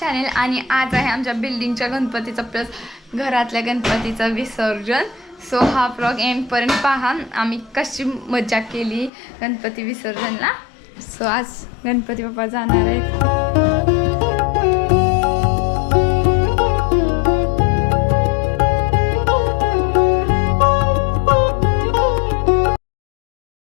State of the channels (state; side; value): drops out; right; at 9.1 s